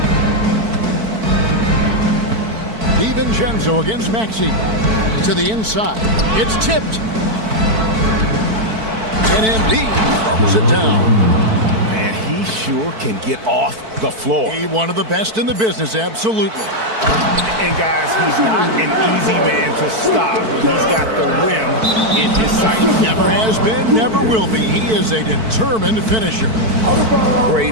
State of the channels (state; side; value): late; left; 4.5 ms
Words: DiVincenzo against Maxey. To the inside. It's tipped. And Embiid throws it down. Man, he sure can get off the floor. He's one of the best in the business, absolutely. And guys, he's not an easy man to stop when he's got the rim in his sight. Never has been, never will be. He is a determined finisher. Great